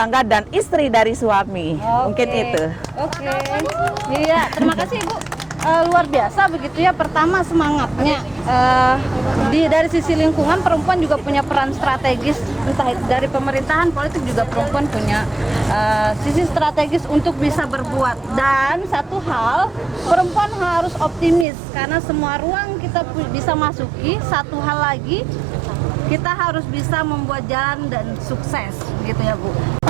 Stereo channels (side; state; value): left; drops out; at 21.5 s